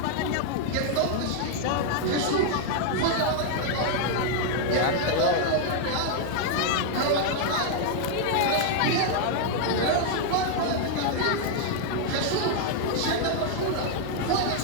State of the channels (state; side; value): different; both; correlation 0.00